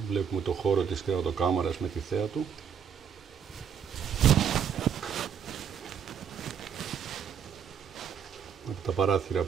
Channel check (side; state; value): left; quieter; 7.7 dB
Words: Βλέπουμε το χώρο της κρεβατοκάμαρας με τη θέα του. Με τα παράθυρα